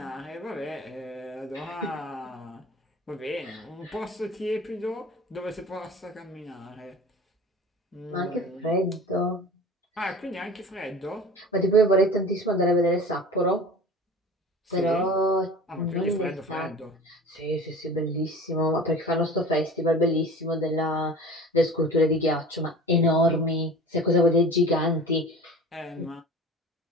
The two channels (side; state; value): both; normal; correlation 0.39